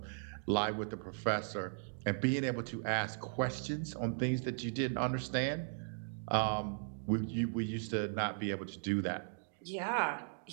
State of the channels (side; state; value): left; silent; digital silence